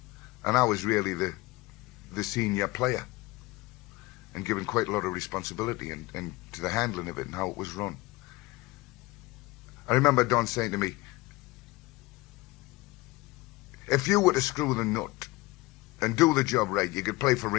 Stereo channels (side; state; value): right; quieter; 21.3 dB